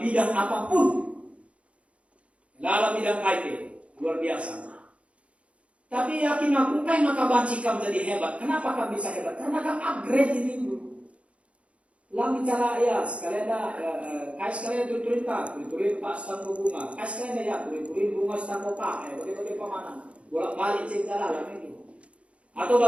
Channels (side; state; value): left; late; 0.062 ms